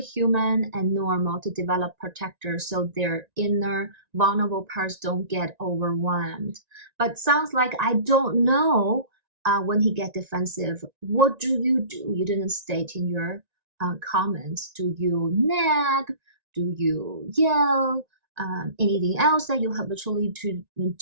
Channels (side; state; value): left; late; 1.9 ms